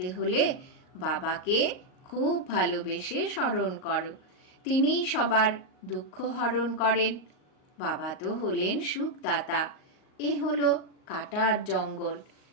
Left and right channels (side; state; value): right; late; 38 ms